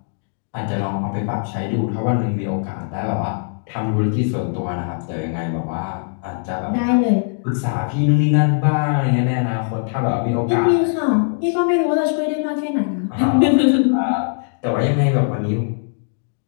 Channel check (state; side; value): silent; right; digital silence